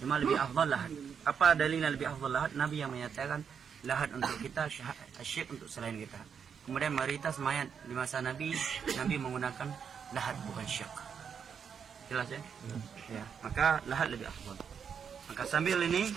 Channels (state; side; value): quieter; left; 7.1 dB